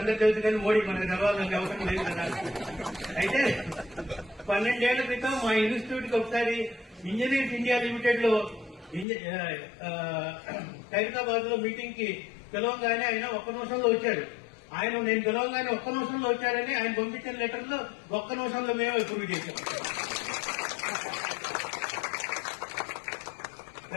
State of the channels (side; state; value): right; drops out; at 9.1 s